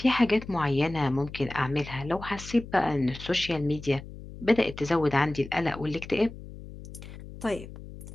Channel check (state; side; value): noise; left; hum, 14 dB below the sound